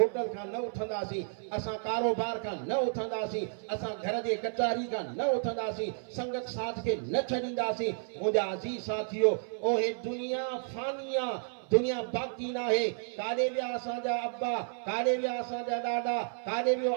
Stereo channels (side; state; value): left; silent; 57 dB below the other